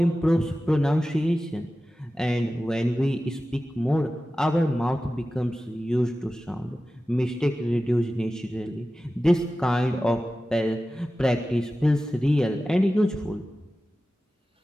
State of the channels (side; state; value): both; normal; correlation 0.95